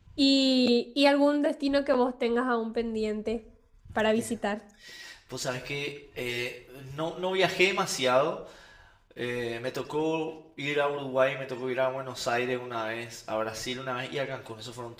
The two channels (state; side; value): identical; both; correlation 1.00